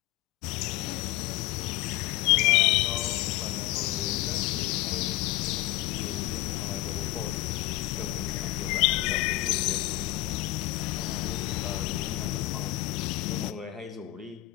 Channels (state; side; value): quieter; right; 16.7 dB